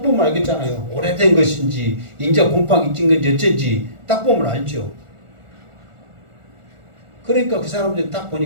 보면 알겠잖아요. 오래된 것인지 인자 곰팡이 찐 건지 어쩐지 딱 보면 알죠. 그러니까 그 사람들이 딱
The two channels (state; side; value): late; left; 1.4 ms